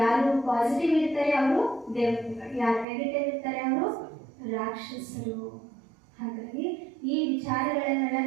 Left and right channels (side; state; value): left; drops out; at 2.9 s